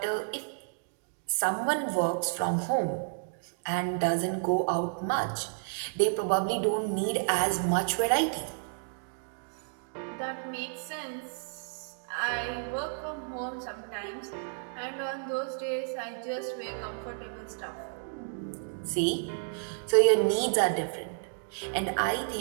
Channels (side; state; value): left; silent; digital silence